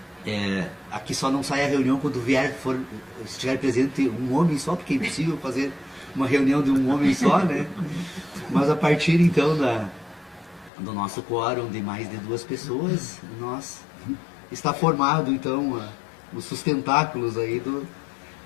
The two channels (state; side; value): drops out; right; at 10.7 s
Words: Aqui só não sai a reunião quando estiver presente um homem só, porque é impossível fazer uma reunião de um homem só, né? Mas a partir então do nosso quórum de mais de 2 pessoas, está formado então os sustentáculos aí